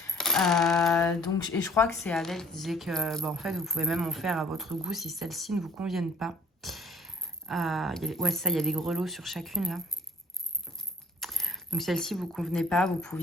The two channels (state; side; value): normal; both; correlation 0.55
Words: Donc, et je crois que c'est Adèle qui disait que, bah, en fait, vous pouvez même en faire à votre goût si celles-ci ne vous conviennent pas. Ouais, ça, il y a des grelots sur chacune là. Donc celle-ci vous convenait pas, vous